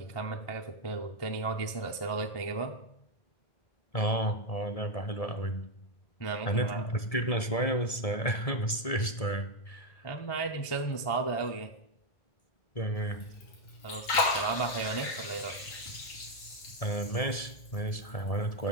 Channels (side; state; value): right; late; 1.7 ms